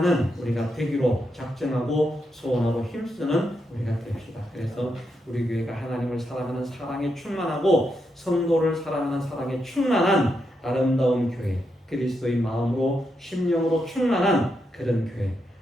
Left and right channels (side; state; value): both; normal; correlation 0.83